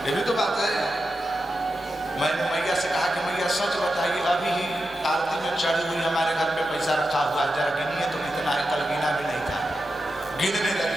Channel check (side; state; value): both; normal; correlation 0.89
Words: ये भी तो बात है। मैंने मैया से कहा कि मैया सच बताइए, अभी ही आरती में चढ़ी हुई हमारे घर पे पैसा रखा हुआ है, जरा गिनिए तो कितना है। कल गिना भी नहीं था, गिनने